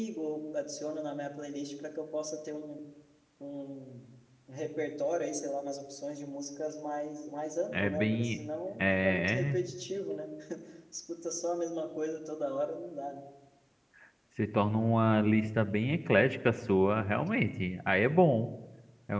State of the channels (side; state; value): both; identical; correlation 1.00